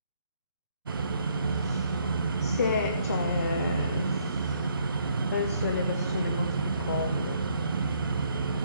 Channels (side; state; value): both; inverted; correlation -0.68